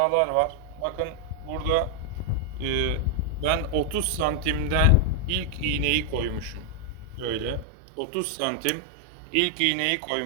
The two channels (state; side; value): drops out; left; at 7.7 s